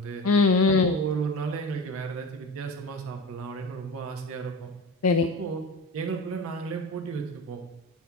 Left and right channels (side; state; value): both; normal; correlation 0.30